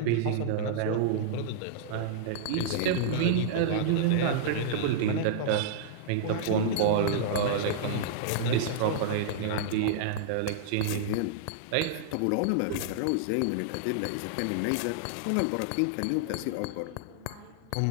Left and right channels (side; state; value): both; different; correlation -0.02